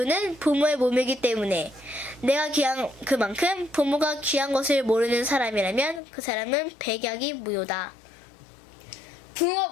부모의 몸이기 때문에 내가 귀한 그만큼 부모가 귀한 것을 모르는 사람이라면 그 사람은 백약이 무효다.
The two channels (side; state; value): right; drops out; at 6.0 s